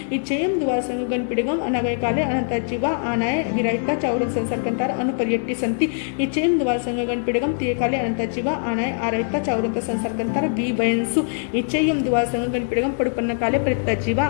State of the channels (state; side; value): silent; right; 64 dB below the other